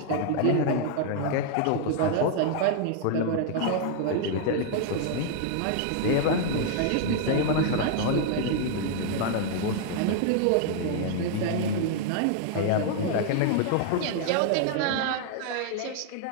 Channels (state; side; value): different; both; correlation 0.00